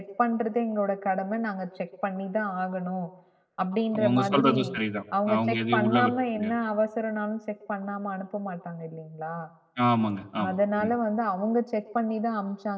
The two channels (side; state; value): both; identical; correlation 1.00